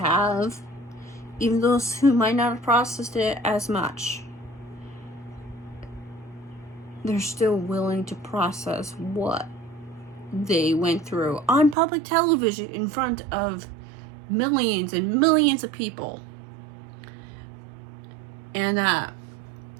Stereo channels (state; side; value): drops out; left; at 11.8 s